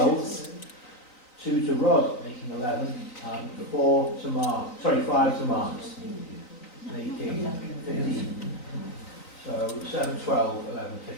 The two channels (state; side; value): late; right; 3.9 ms